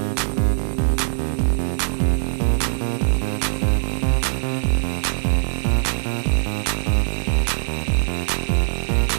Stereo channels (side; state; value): left; silent; digital silence